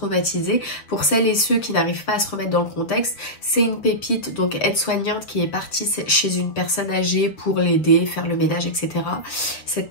Pour celles et ceux qui n'arrivent pas à se remettre dans le contexte, c'est une pépite, donc aide-soignante, qui est partie chez une personne âgée pour l'aider, faire le ménage, etc. Cette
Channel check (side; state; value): right; late; 6.6 ms